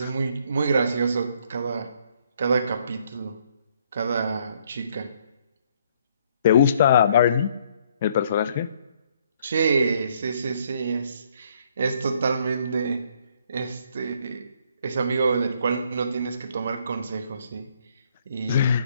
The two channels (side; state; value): both; inverted; correlation -0.66